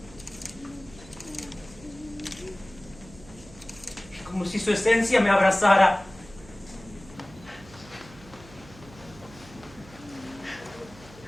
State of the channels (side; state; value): right; noise; hum, 20 dB below the sound